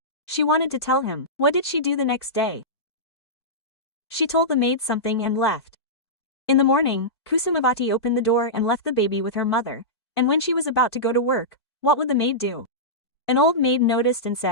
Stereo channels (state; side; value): late; right; 2.4 ms